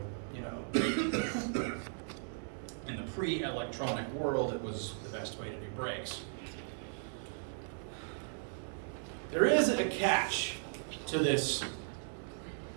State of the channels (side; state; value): left; silent; digital silence